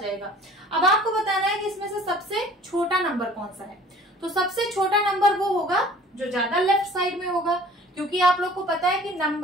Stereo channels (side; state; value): both; normal; correlation 0.49